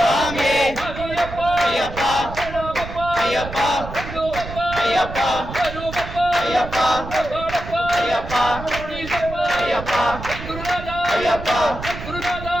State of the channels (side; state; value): right; noise; rumble, 10 dB below the sound